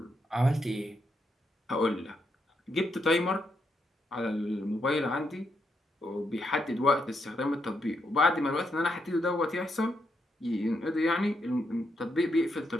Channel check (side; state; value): both; normal; correlation 0.80